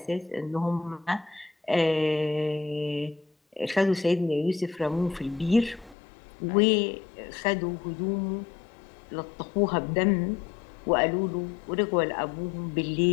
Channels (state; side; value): drops out; right; at 6.0 s